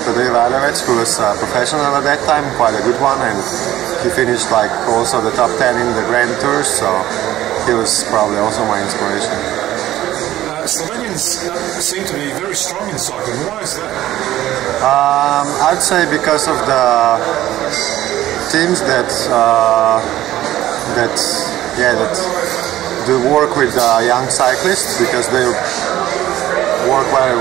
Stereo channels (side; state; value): left; quieter; 14.1 dB